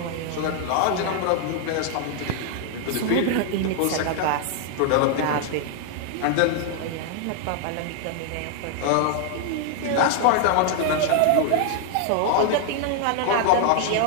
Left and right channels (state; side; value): different; both; correlation 0.00